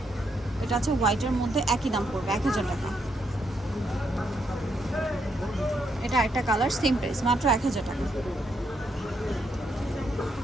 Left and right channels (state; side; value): normal; both; correlation 0.77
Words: এটা আছে হোয়াইটের মধ্যে, একই দাম পড়বে 1000 টাকা। এটা একটা কালার, সেম প্রাইস মাত্র 1000 টাকা,